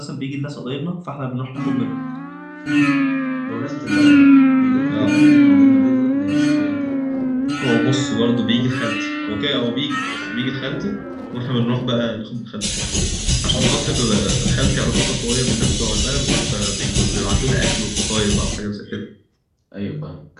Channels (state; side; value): identical; both; correlation 1.00